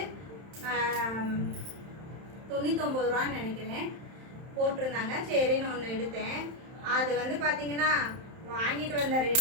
99 ரூபான்னு நினைக்கிறேன் போட்டிருந்தாங்க. சரின்னு ஒன்று எடுத்தேன். அது வந்து பார்த்தீங்கன்னா வாங்கிட்டு வந்த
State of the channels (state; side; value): late; left; 31 ms